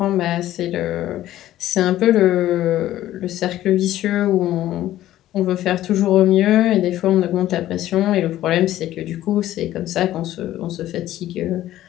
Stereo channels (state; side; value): quieter; right; 13.8 dB